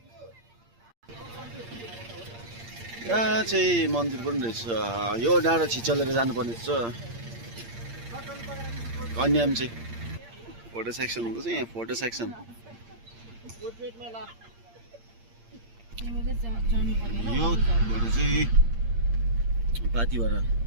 यहाँ चाहिँ मन्दिर पनि रहेछ यो डाँडा छिचलेर जानुपर्ने छ कन्याम चाहिँ फोटो सेक्सन हुँदैछ यहाँ फोटो सेक्सन यो फोटो चाहिँ पाथिभरा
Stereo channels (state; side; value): late; left; 8.7 ms